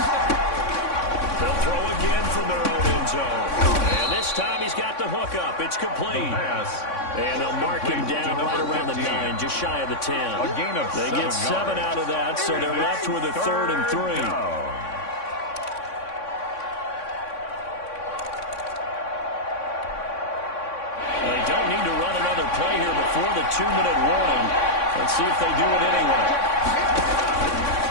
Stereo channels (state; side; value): late; right; 3.6 ms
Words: They'll throw again from their own end zone. And this time he's got the hook up. It's complete. And they'll mark him down right around the 9, just shy of the 10. They get 7 out of that, so they're left with a 3rd and 3. They don't need to run another play here before the 2-minute warning. Let's see if they do it anyway.